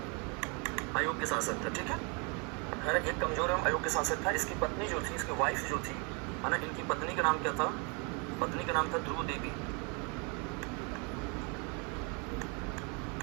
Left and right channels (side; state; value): left; quieter; 33.4 dB